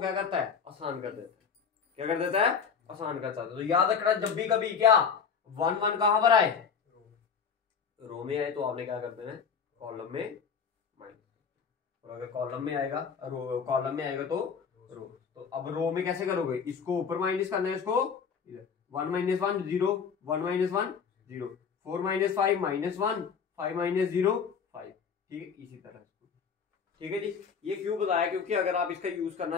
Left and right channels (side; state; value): right; quieter; 6.3 dB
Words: करता है, आसान कर देता है। क्या कर देता है, आसान करता है। तो याद रखना जब भी कभी क्या 1 1 कहां पर आए, रो में आए, तो आपने क्या कर देना है, कॉलम में माइनस। और अगर कॉलम में आएगा, कॉलम में आएगा तो रो। तो अब रो में कैसे करोगे, इसको ऊपर माइनस करना है, इसको इधर 1 माइनस 1 0, 1 माइनस 1 0, 4 माइनस 5 -1, 5 माइनस 0 5। ठीक है, इसी तरह। ठीक है जी, ये क्यों बताया, क्योंकि अगर आप इसका यूज